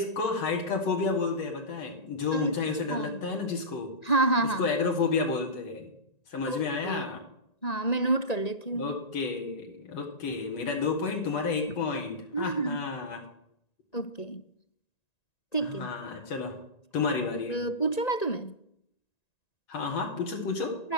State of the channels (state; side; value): late; right; 1.9 ms